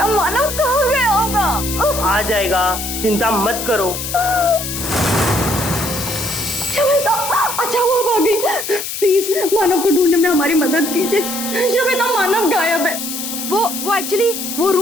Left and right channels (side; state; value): left; noise; hiss, 6 dB below the sound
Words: मानव कहाँ गया होगा? आ जाएगा, चिंता मत करो। शमिता, अच्छा वो भाग गई। प्लीज मानव को ढूंढने में हमारी मदद कीजिए। शमिता, मानव गायब है। वो एक्चुअली वो